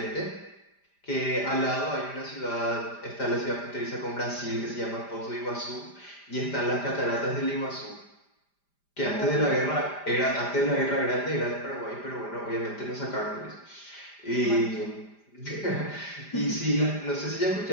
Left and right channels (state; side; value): late; right; 5.0 ms